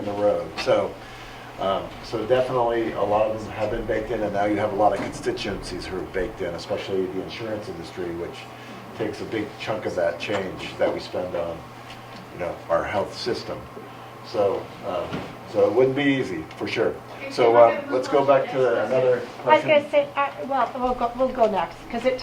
the road. So definitely a lot of them have been baked in, and now you have a lot of constituencies who are baked in, especially the insurance industry, which takes a big chunk of that change that we spend on, our health system. So it wouldn't be easy, for sure. So let's go back to another I was question. going to say, we'll go next, because it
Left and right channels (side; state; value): both; identical; correlation 1.00